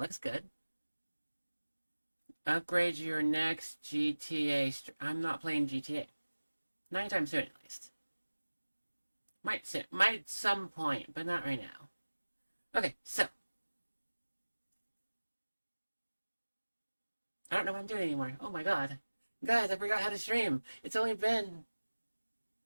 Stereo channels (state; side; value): inverted; both; correlation -1.00